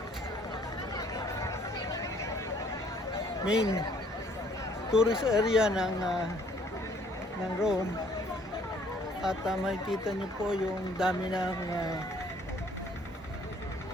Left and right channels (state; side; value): normal; both; correlation 0.61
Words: main tourist area ng Rome. At makikita nyo po yung dami ng